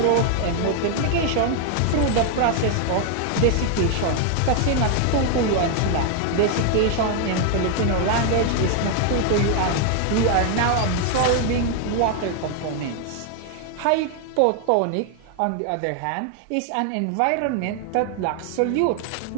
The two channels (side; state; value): both; different; correlation 0.00